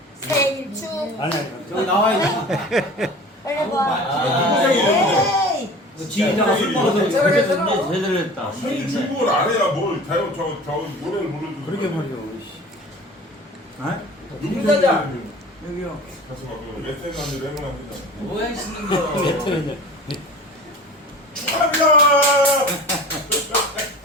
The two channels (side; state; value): both; normal; correlation 0.40